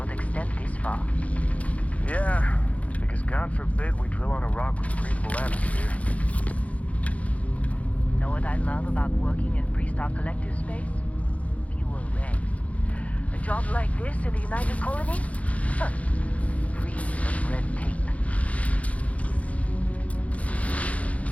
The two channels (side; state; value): right; late; 0.067 ms